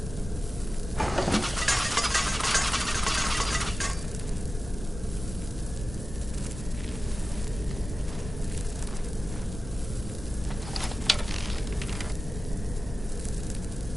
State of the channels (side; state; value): both; normal; correlation 0.95